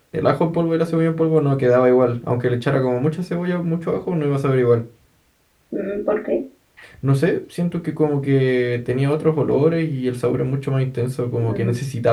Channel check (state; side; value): identical; both; correlation 1.00